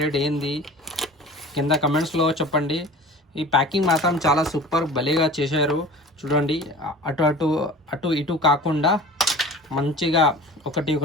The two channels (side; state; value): both; normal; correlation 0.40